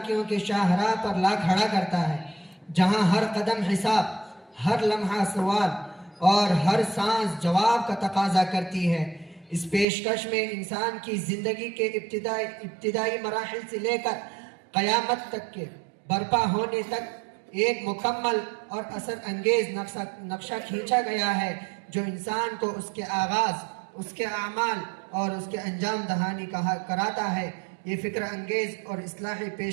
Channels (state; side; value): drops out; left; at 9.9 s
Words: کی شاہراہ پر لا کھڑا کرتا ہے، جہاں ہر قدم حساب، ہر لمحہ سوال اور ہر سانس جواب کا تقاضا کرتی ہے۔ اس پیشکش میں انسان کی زندگی کے ابتدائی مراحل سے لے کر قیامت تک کے برپا ہونے تک ایک مکمل اور اثر انگیز نقشہ کھینچا گیا ہے جو انسان کو اس کے آغاز، اس کے اعمال اور اس کے انجام دہانی کراتا ہے۔ یہ فکر انگیز اور اصلاحی